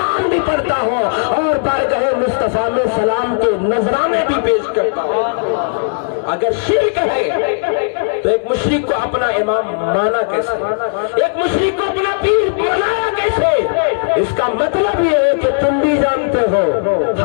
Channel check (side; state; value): right; silent; digital silence